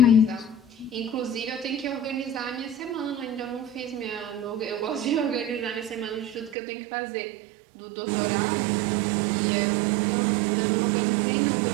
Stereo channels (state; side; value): drops out; left; at 6.6 s